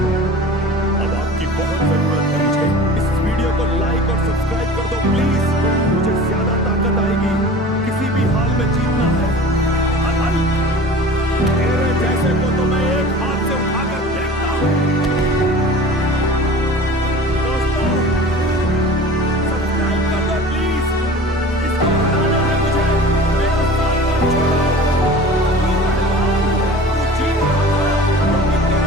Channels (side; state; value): both; normal; correlation 0.40